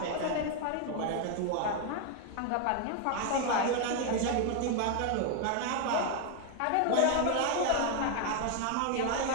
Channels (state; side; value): different; both; correlation 0.01